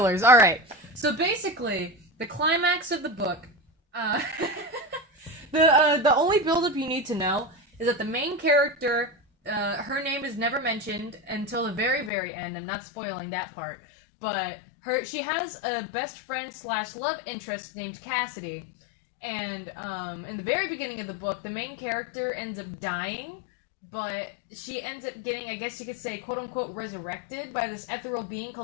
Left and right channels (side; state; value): right; drops out; at 12.1 s